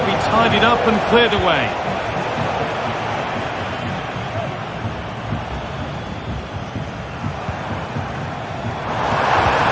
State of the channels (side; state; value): both; identical; correlation 1.00